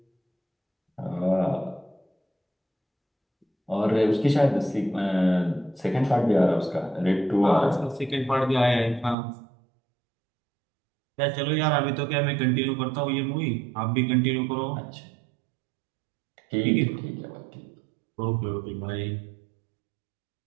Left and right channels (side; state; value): left; drops out; at 9.2 s